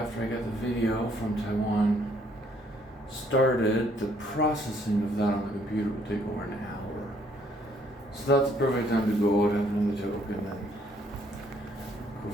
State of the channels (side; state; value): both; normal; correlation 0.66